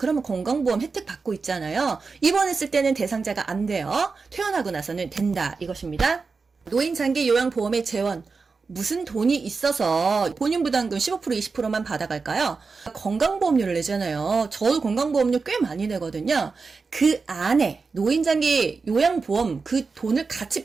건강보험 혜택 받고 있잖아요. 입원했을 때는 대상자가 안 돼요. 퇴원하고 나서는 된다 이것입니다. 노인 장기 요양보험의 재원. 무슨 돈이 있어서 본인 부담금 15% 20%만 받아갈까요? 건강보험료를 내잖아요. 저도 건강보험료 꽤 많이 내거든요. 그 안에 노인장기 요양보험 그 돈을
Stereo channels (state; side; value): quieter; left; 4.6 dB